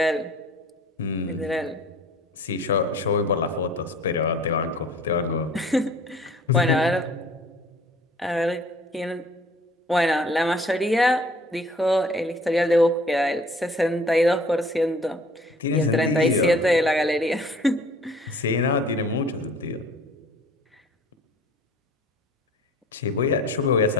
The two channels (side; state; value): both; normal; correlation 0.52